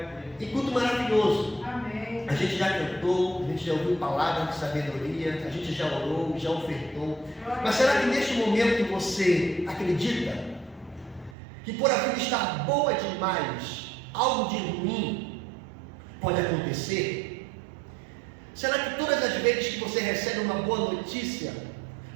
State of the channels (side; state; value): left; drops out; at 11.4 s